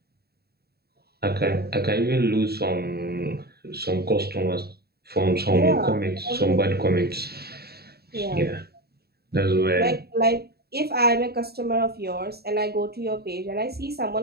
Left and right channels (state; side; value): late; left; 0.46 ms